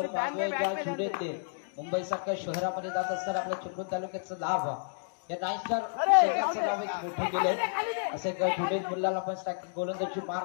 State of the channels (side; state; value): right; silent; digital silence